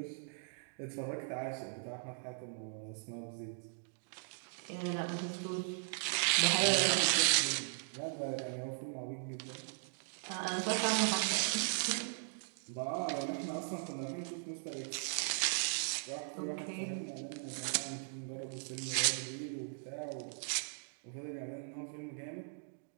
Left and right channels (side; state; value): left; silent; digital silence